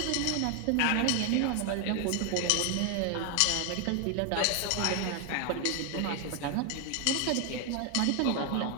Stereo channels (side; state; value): both; different; correlation 0.01